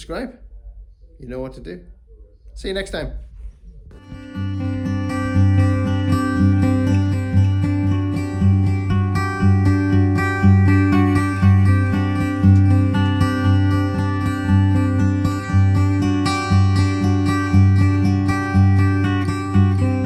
You know what to do. See you next time.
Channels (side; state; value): both; identical; correlation 1.00